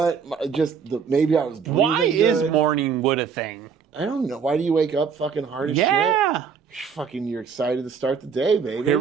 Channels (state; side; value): quieter; left; 6.3 dB